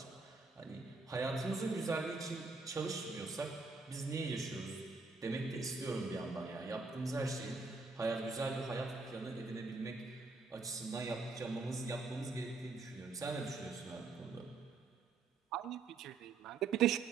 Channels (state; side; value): quieter; left; 4.1 dB